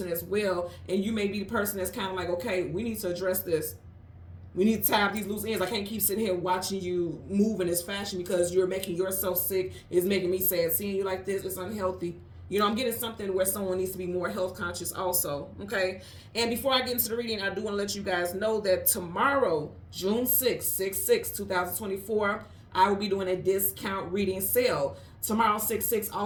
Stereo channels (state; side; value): identical; both; correlation 1.00